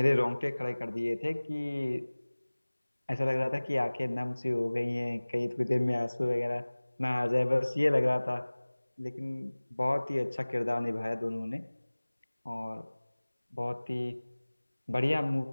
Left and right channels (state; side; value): inverted; both; correlation -1.00